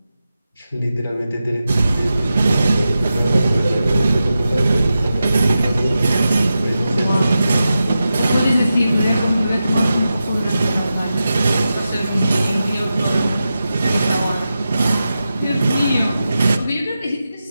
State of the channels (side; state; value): both; inverted; correlation -0.91